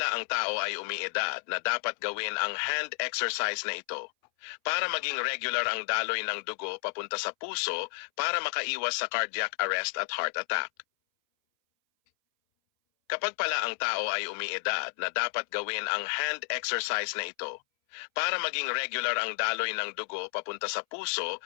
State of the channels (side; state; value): right; silent; 57 dB below the other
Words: ang tao ay umiidad na dapat gawin ang hand exercise na ito para maging regular ang daloy ng dugo papunta sa puso para makaiwas sa cardiac arrest at heart attack. Kapag pala ang tao ay umiidad na dapat gawin ang hand exercise na ito para maging regular ang daloy ng dugo papunta sa puso